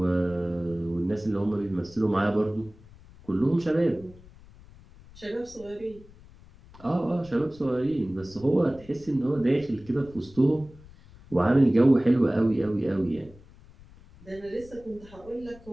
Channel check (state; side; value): noise; left; rumble, 22 dB below the sound